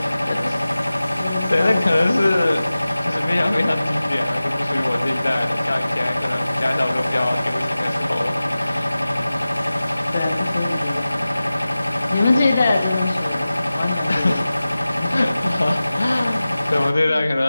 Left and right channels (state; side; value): inverted; both; correlation -0.96